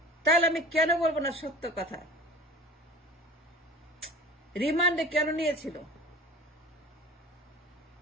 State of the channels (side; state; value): both; normal; correlation 0.38